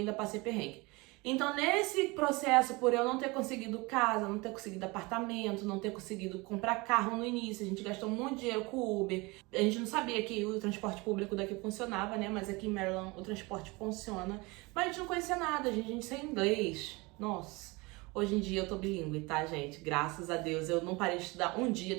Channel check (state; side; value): quieter; left; 25.1 dB